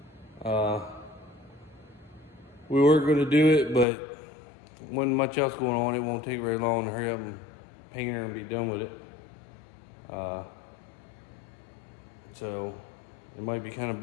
We were going to do it, but wasn't much else going on. It won't take very long to hurry up and paint her and be done with it. So it might be kind of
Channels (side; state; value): right; drops out; at 3.9 s